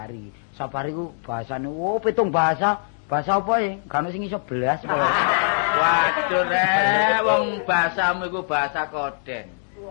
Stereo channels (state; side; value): silent; right; digital silence